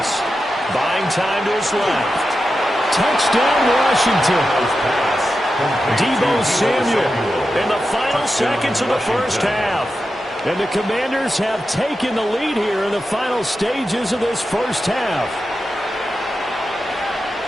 Buying time to his left. Touchdown, Washington. Deebo Samuel in the final seconds of the first half. And the Commanders have taken the lead here in the final stages of this first half.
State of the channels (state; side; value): normal; both; correlation 0.90